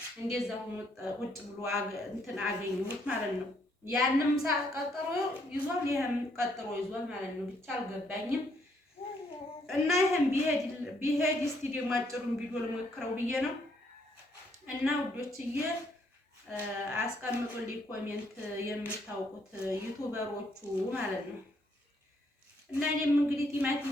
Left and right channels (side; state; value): both; normal; correlation 0.70